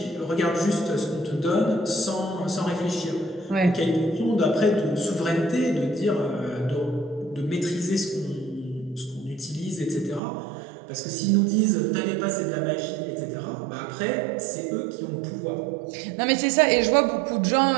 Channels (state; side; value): drops out; left; at 10.2 s